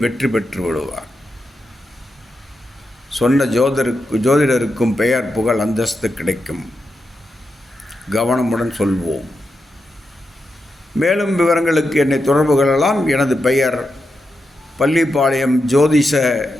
வெற்றி பெற்று விடுவார். சொன்ன ஜோதிடருக்கும் பெயர் புகழ் அந்தஸ்து கிடைக்கும். கவனமுடன் சொல்வோம். மேலும் விவரங்களுக்கு என்னை தொடர்பு கொள்ளலாம். எனது பெயர் பள்ளிப்பாளையம் ஜோதிஷ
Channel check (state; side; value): normal; both; correlation 0.87